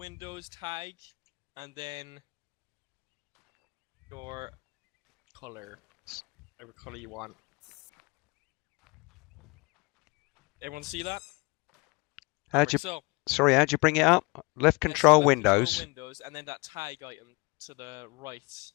tag, and then your color. Whatever color you want. Everyone see that? How'd you? So, Sorry, how'd you bring it up? Left yes, control left Windows. Control Windows, and then that tag item to the right.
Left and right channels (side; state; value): right; quieter; 26.8 dB